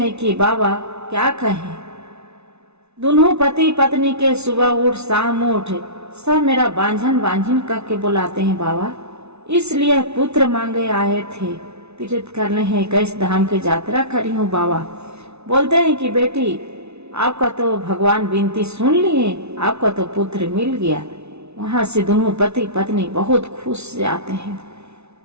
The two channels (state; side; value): late; left; 0.81 ms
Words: कि बाबा क्या कहें, दोनों पति पत्नी के सुबह उठ शाम उठ सब मेरा बांझन करके बुलाते हैं बाबा, इसलिए पुत्र मांगे आए थे, तीर्थ करने हैं 21 धाम की यात्रा करी हूँ बाबा। बोलते हैं कि बेटी आपका तो भगवान विनती सुन लिए, आपका तो पुत्र मिल गया। वहां से दोनों पति पत्नी बहुत खुश से आते हैं।